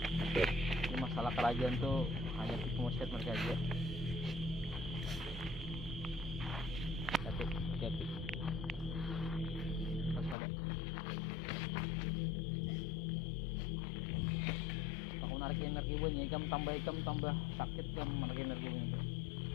masalah kerajaan tuh hanya tipu muslihat mereka aja. Hati-hati. Waspada. Aku narik energi buahnya, ikam tambah sakit kan menarik energi buahnya.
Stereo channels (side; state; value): right; drops out; at 10.4 s